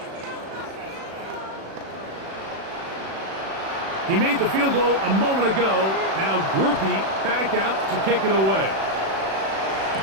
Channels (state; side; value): late; left; 36 ms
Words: He made the field goal a moment ago. Now Groupie back out to kick it away.